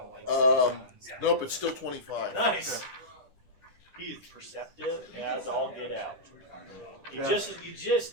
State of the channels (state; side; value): late; left; 10 ms